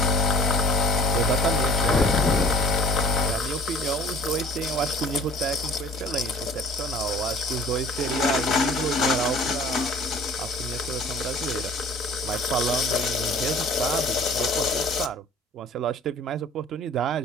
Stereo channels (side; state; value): both; normal; correlation 0.49